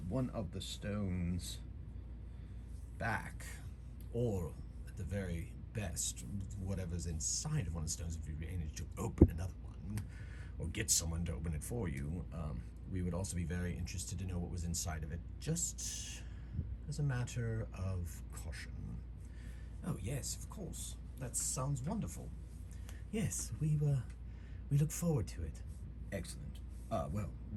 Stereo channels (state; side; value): identical; both; correlation 1.00